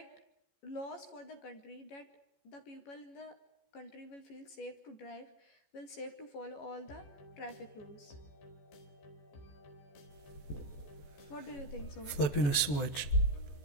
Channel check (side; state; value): right; late; 14 ms